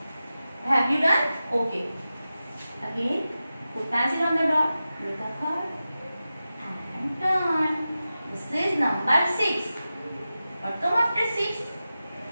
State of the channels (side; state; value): both; inverted; correlation -0.94